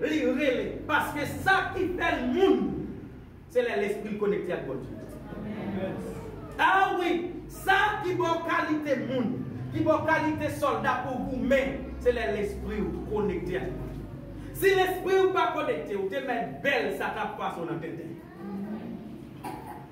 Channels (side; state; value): both; identical; correlation 1.00